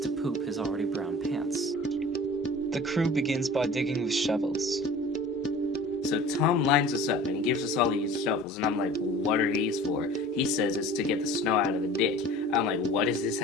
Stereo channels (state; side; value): normal; both; correlation 0.42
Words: poop his already brown pants. The crew begins by digging with shovels. So Tom lines us up and he gives us all these shovels and I'm like, what are these for? He says it's to get the snow out of the ditch. I'm like, what does this